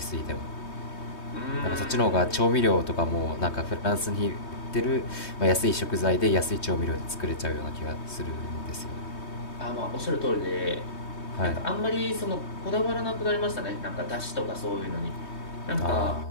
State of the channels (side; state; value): right; late; 3.2 ms